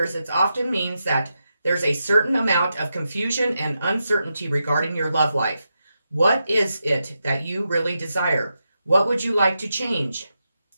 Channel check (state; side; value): inverted; both; correlation -0.87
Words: it often means that there's a certain amount of confusion and uncertainty regarding your love life. What is it that you really desire? What would you like to change